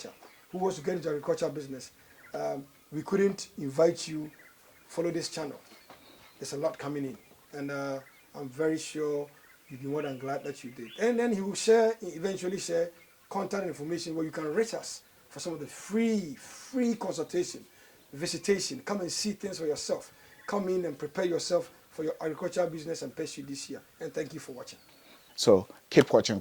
who wants to get into agriculture business, we couldn't invite you follow this channel. There's a lot coming in, and I'm very sure you'll be more than glad that you did. And then he will eventually share contact information where you can reach us for some of the free consultation, visitation. Come and see things for yourself. Come in and prepare yourself for your agricultural business and pursue this year. And thank you for watching. So keep watching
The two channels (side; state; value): both; identical; correlation 1.00